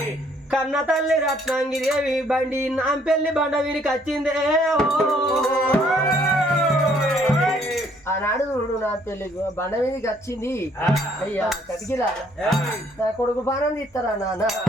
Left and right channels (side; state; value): both; normal; correlation 0.64